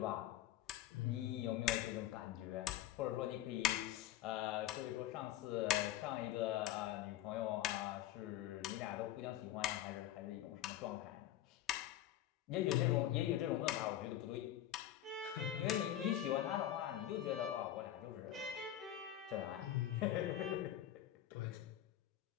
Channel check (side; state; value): right; quieter; 12.6 dB